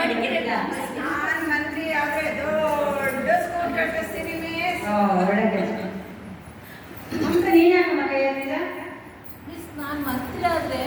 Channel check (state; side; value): identical; both; correlation 1.00